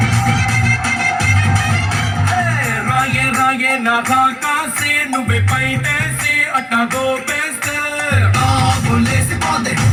రాగే రాగే నా కాకాసే నువ్వే పైటేసి అట్టా గోపేస్తే బోలేసి పోతే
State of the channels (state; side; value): identical; both; correlation 1.00